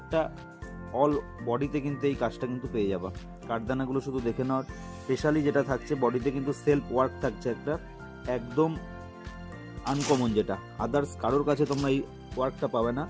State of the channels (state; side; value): identical; both; correlation 1.00